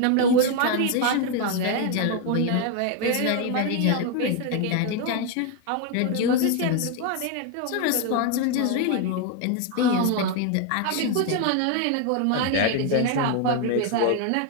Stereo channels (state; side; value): different; both; correlation 0.01